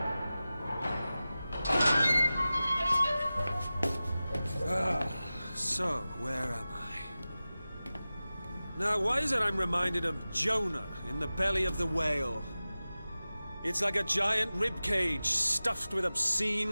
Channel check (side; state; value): both; inverted; correlation -0.96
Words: So, where am I? Now, why is it I'm reminded of Jonah in the belly of the whale? It's like a giant ribcage stuffed with